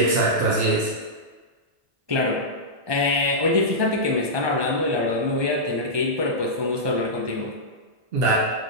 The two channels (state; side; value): late; left; 1.2 ms